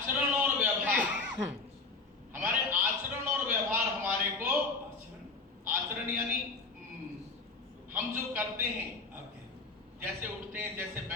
और व्यवहार हमारे को आचरण यानी हम जो करते हैं, जैसे उठते हैं, जैसे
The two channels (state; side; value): quieter; right; 4.0 dB